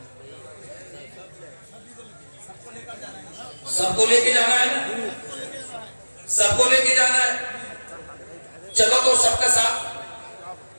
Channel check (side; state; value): both; inverted; correlation -1.00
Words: سب کو لے کے جانا ہے نا، سب کو لے کے جانا ہے۔ چلو تو سب کا ساتھ،